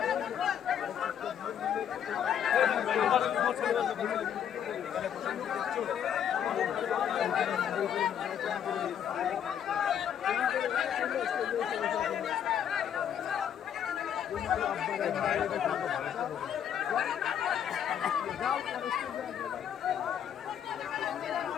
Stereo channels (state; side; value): quieter; right; 9.1 dB